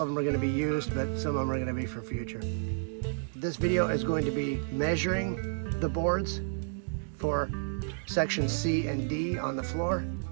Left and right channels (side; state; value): left; silent; digital silence